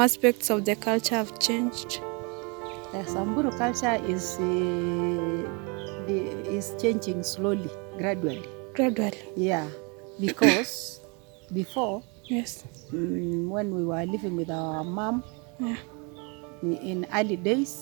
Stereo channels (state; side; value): quieter; left; 32.2 dB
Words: of the culture have changed? The Samburu culture is changing slowly, gradually. Gradually? Yeah, because before, yes, when we were living with our mom, yeah, in early